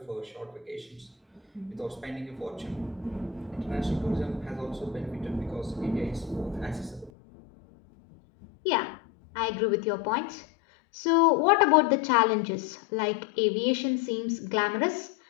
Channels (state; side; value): drops out; right; at 7.1 s